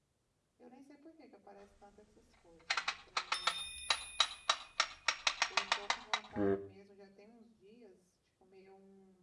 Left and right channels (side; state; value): both; identical; correlation 1.00